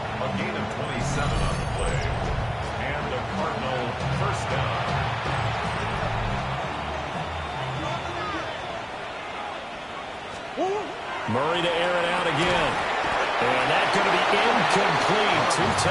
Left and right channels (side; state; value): both; identical; correlation 1.00